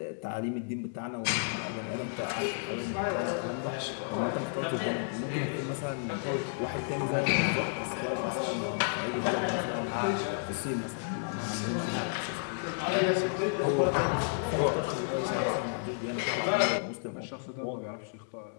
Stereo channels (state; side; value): silent; right; digital silence